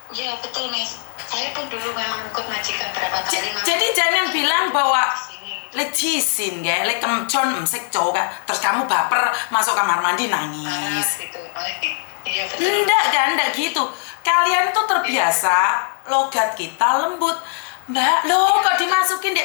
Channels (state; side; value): silent; right; digital silence